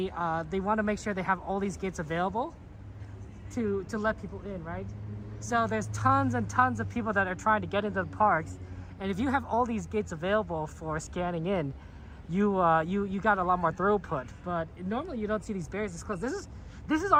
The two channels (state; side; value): identical; both; correlation 1.00